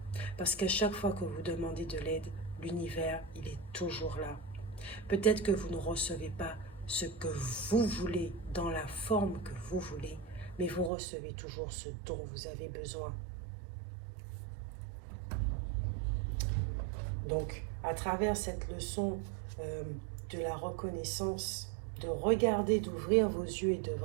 Parce qu'à chaque fois que vous demandez de l'aide, l'univers, il est toujours là. Peut-être que vous ne recevez pas ce que vous voulez, dans la forme que vous voulez, mais vous recevez toujours ce dont vous avez besoin. Donc, à travers cette leçon de la reconnaissance, de regarder, d'ouvrir vos yeux et de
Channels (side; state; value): left; drops out; at 10.9 s